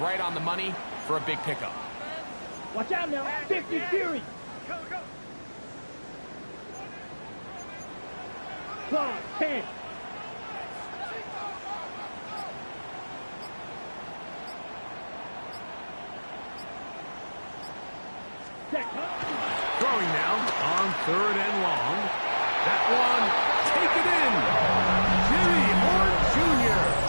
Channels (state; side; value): inverted; both; correlation -1.00